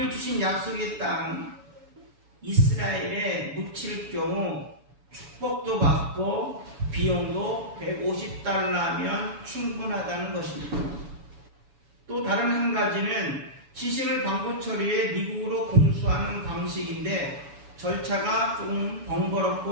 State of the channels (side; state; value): left; late; 7.1 ms